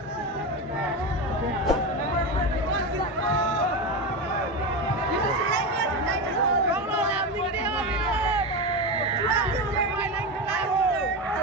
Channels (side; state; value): both; normal; correlation 0.18